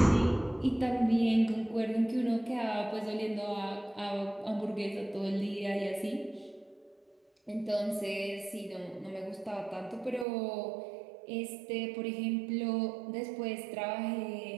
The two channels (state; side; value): drops out; left; at 10.2 s